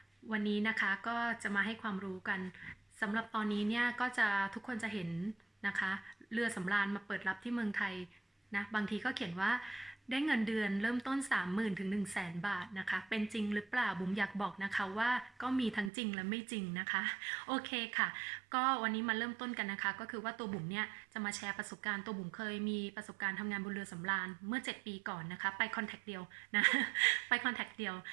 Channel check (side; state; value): left; drops out; at 15.9 s